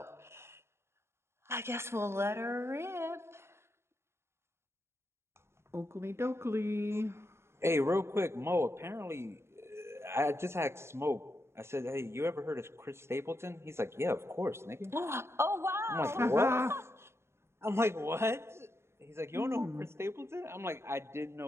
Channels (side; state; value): left; late; 0.12 ms